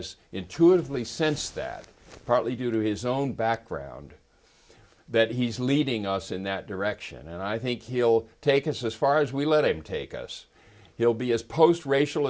intuitively sensed that, partly due to his own background, that he's leading us in that direction. And I think he'll take us as far as we let him take us. He'll be as post-racial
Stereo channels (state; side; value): identical; both; correlation 1.00